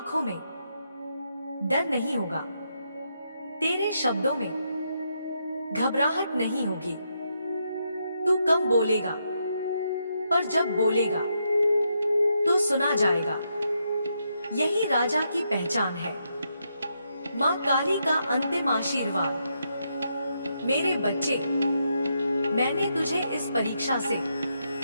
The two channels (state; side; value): inverted; both; correlation -0.80